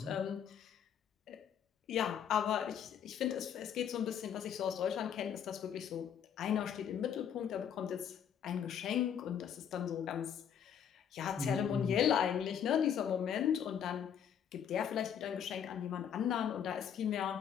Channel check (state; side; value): quieter; right; 8.5 dB